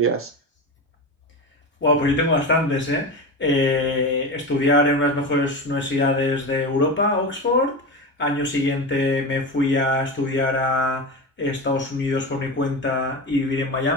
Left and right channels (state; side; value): normal; both; correlation 0.23